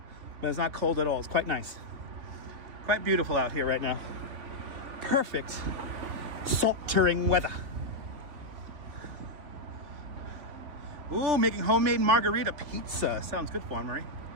but it's not cold at all. It's quite nice. Quite beautiful out here right now. Perfect sweltering weather. Ooh, making homemade margarita pizza. Sounds good for Marie.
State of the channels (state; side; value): late; left; 3.5 ms